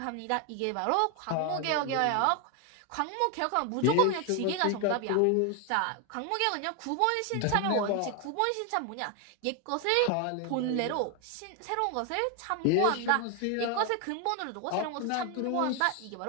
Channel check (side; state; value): both; different; correlation 0.01